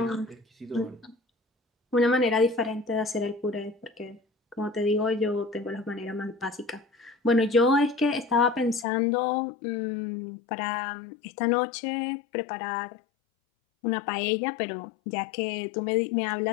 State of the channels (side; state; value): right; drops out; at 8.8 s